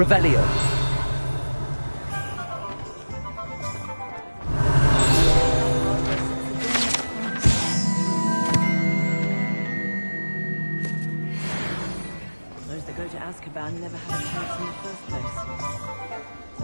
Those that go to Azkaban never had a chance in the first place.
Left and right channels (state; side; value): inverted; both; correlation -1.00